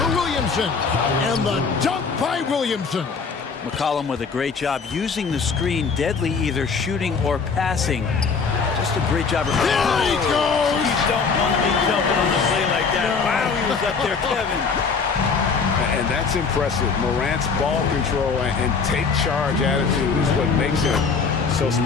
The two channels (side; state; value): right; quieter; 5.2 dB